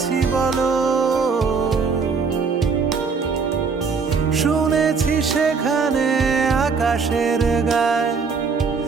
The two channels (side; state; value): left; quieter; 5.1 dB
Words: বলো, শুনেছি সেখানে আকাশের গায়